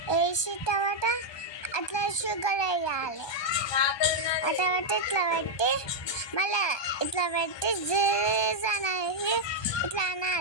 తర్వాత అట్లా షుగర్ వేయాలి. ఆ తర్వాత ఇట్లా పెట్టి మళ్ళీ ఇట్లా పెట్టి జీజ్ అనేసి ఇట్లా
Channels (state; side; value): late; right; 1.2 ms